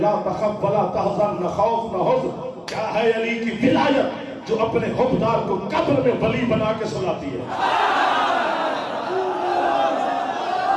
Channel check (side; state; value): both; identical; correlation 1.00